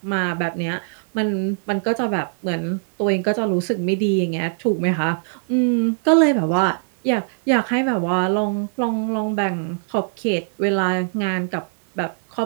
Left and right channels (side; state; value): left; silent; digital silence